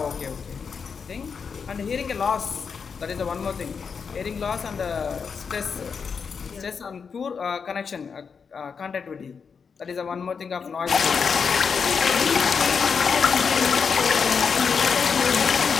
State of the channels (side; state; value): right; quieter; 5.9 dB